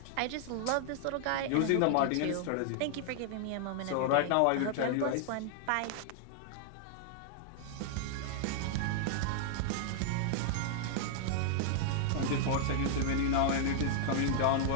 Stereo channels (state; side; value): different; both; correlation 0.00